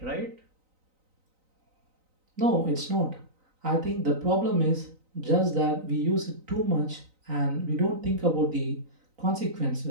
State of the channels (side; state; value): left; late; 3.9 ms